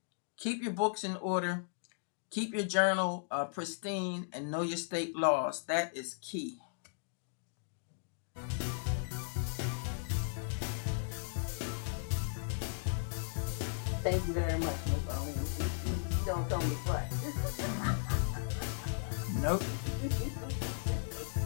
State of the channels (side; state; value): right; silent; digital silence